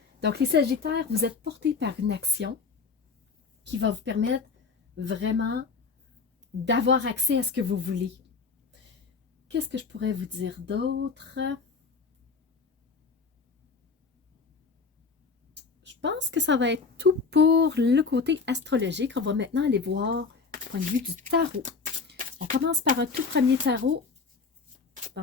Donc les Sagittaires, vous êtes portés par une action qui va vous permettre vraiment d'avoir accès à ce que vous voulez. Qu'est-ce que je pourrais vous dire d'autre? Je pense que ça va être tout pour le côté astrologique. On va maintenant aller voir du point de vue du tarot. On commence par un tout premier tarot.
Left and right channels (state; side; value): quieter; right; 4.8 dB